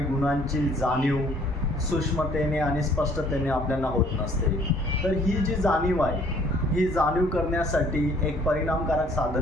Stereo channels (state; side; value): normal; both; correlation 0.59